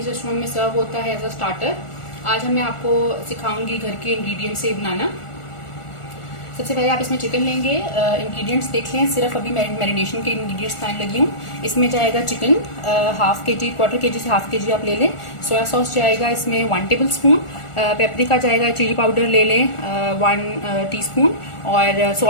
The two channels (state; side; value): late; right; 1.4 ms